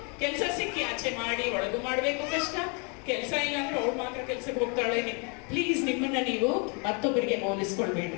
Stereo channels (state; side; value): quieter; right; 35.2 dB